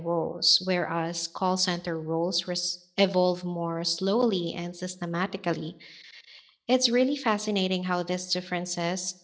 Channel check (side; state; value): both; identical; correlation 1.00